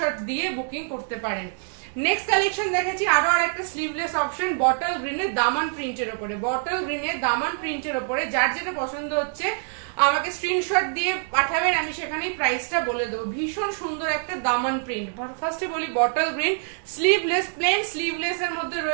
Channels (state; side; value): silent; left; 62 dB below the other